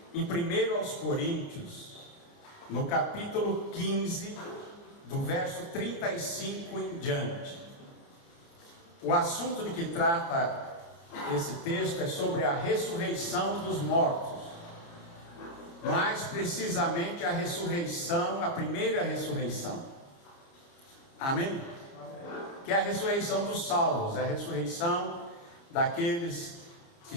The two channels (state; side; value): late; right; 29 ms